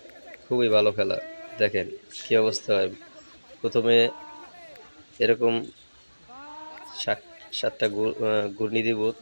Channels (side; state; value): both; inverted; correlation -1.00